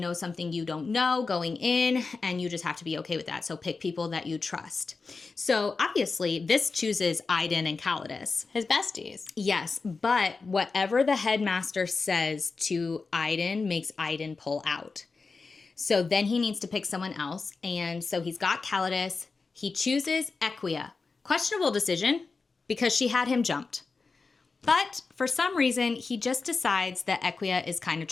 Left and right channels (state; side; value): quieter; right; 4.3 dB